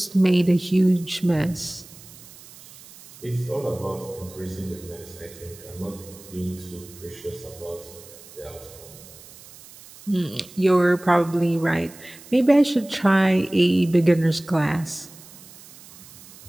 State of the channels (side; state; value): right; noise; hiss, 20 dB below the sound